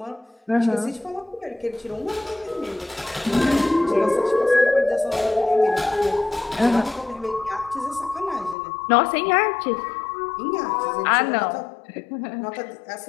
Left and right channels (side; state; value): right; drops out; at 8.6 s